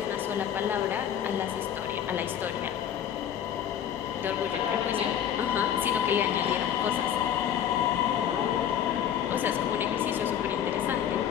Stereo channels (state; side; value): quieter; right; 9.6 dB